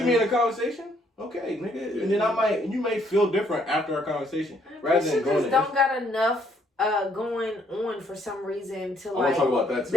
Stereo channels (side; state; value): both; normal; correlation 0.68